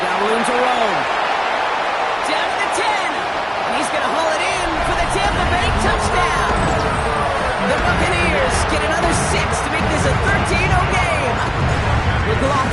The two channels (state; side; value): identical; both; correlation 1.00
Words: got room to roll. Down to the 10. And he's going to haul it in for the Tampa Bay touchdown. The Buccaneers get another 6 to make this a 13-0 game.